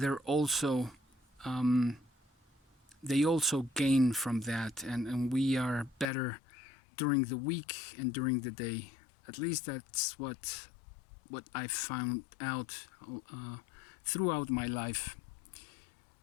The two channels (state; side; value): drops out; right; at 6.1 s